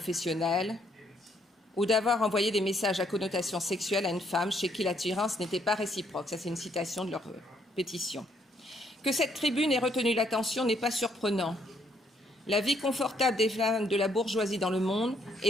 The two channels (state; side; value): normal; both; correlation 0.70